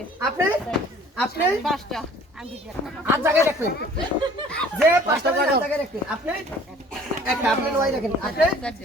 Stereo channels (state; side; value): normal; both; correlation 0.51